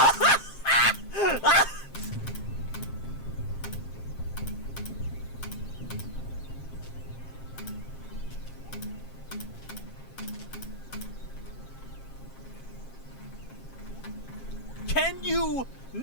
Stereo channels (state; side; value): late; right; 7.5 ms